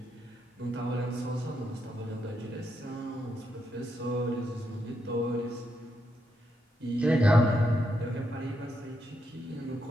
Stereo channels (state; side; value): normal; both; correlation 0.81